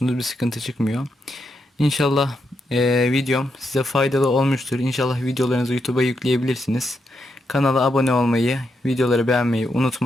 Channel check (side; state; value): both; normal; correlation 0.82